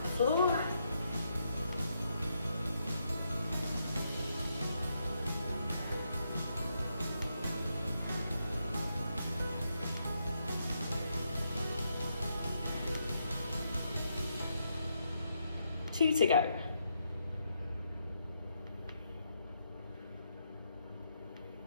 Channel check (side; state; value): both; inverted; correlation -0.79